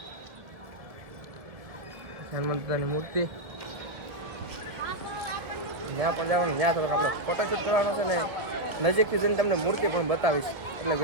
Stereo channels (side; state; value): left; late; 1.7 ms